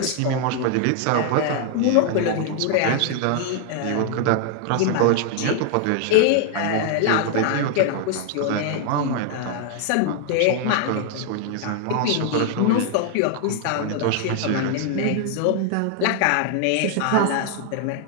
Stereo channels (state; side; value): different; both; correlation 0.00